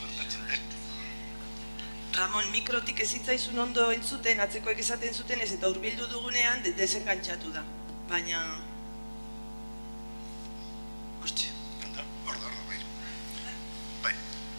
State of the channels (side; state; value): both; inverted; correlation -1.00